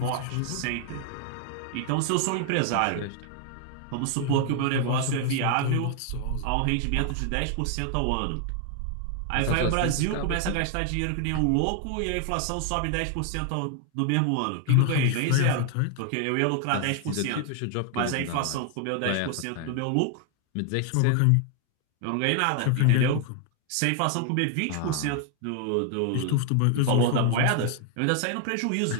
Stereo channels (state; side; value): different; both; correlation 0.00